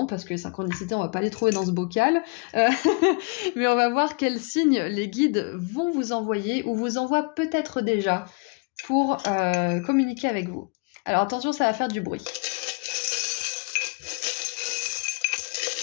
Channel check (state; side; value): quieter; right; 34.0 dB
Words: que les synchronicités, on va pas les trouver dans ce bocal, mais on va voir quel signe les guides vont vous envoyer ou vous envoient peut-être déjà pour communiquer avec vous. Alors attention, ça va faire du bruit.